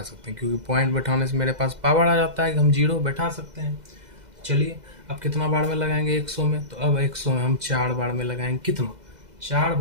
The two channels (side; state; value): left; late; 2.0 ms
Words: सकते हैं, क्योंकि पॉइंट बैठाने से मेरे पास पावर आ जाता है कि हम 0 बैठा सकते हैं। चलिए अब कितना बार में लगाएंगे 100 में? तो अब 100 में हम 4 बार में लगाएंगे। कितना? 4